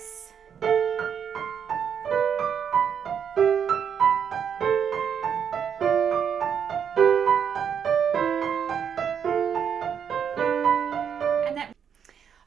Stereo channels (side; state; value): left; quieter; 7.7 dB